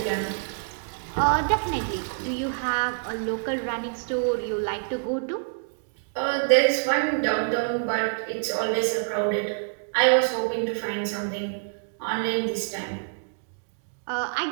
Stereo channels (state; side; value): silent; left; digital silence